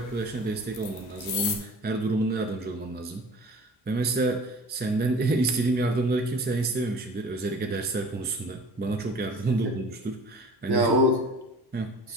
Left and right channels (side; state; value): both; normal; correlation 0.44